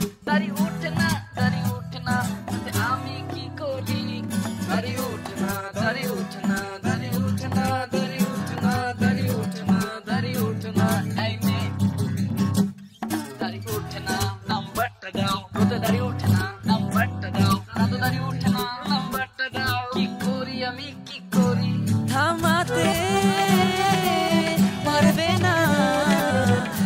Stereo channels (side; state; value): both; identical; correlation 1.00